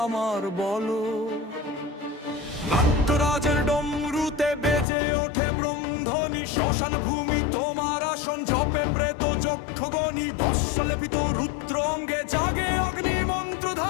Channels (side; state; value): right; drops out; at 4.9 s